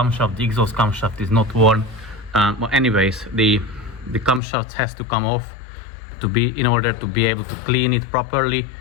the exhaust camshaft, is not worn. But anyways, the camshaft has to come off in order to be able to clean it properly,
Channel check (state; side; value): drops out; right; at 4.4 s